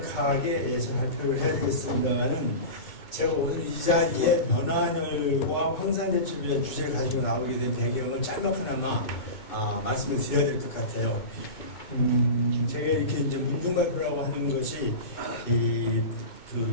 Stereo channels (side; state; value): right; late; 2.2 ms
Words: 발표를 해야 되겠습니다만은 제가 오늘 이 자리에 변환열과 황산대첩이라는 주제를 가지고 나오게 된 배경을 짤막하나마 말씀을 드려야 될 것 같아요. 제가 이렇게 이제 문중발표라고 하는 것이